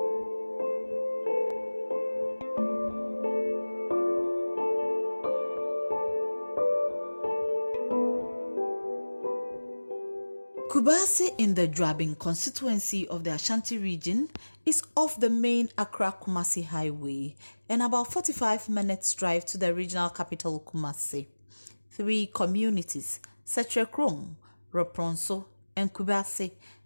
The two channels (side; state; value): both; inverted; correlation -1.00